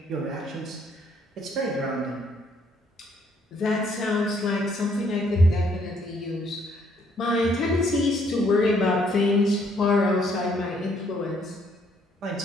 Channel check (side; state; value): both; normal; correlation 0.67